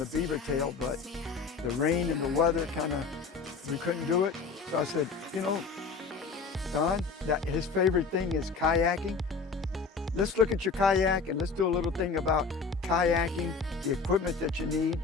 beaver tail, but the rain and the weather we couldn't do it. So I said, Don, that his favorite thing is kayaking. Let's look at your kayak and let's do a little thing about kayaking, the equipment that you need,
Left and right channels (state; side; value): quieter; right; 4.8 dB